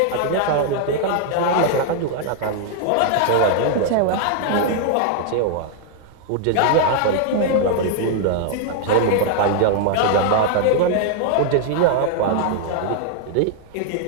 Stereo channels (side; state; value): both; different; correlation 0.00